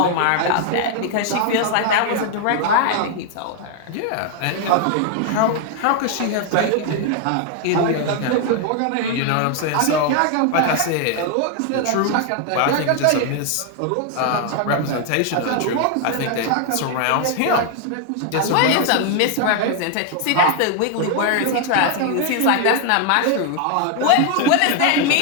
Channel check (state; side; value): different; both; correlation 0.00